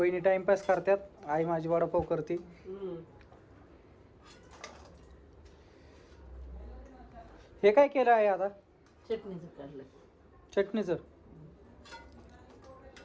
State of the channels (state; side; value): identical; both; correlation 1.00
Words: टाइमपास करतात, आई माझी वडापाव करते. हे काय केलं आहे आता? चटणीचं काढलं. चटणीचं